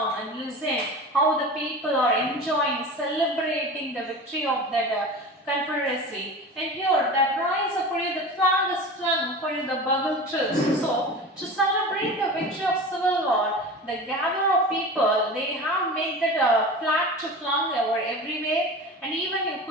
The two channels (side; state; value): both; normal; correlation 0.33